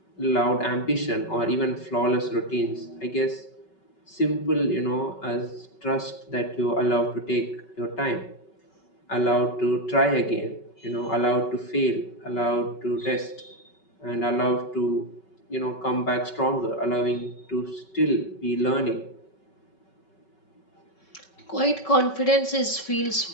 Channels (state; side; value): late; right; 5.3 ms